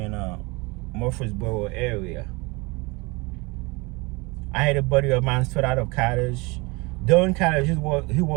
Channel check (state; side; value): quieter; left; 26.2 dB